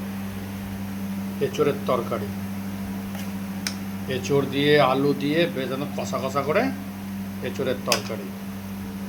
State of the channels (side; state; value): both; identical; correlation 1.00